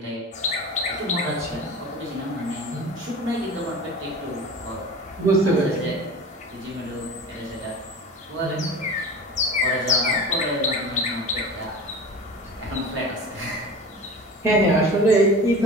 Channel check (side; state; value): both; normal; correlation 0.34